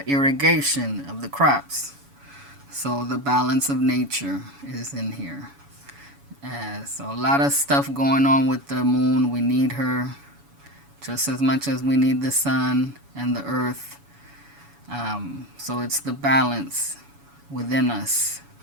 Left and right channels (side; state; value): left; late; 7.1 ms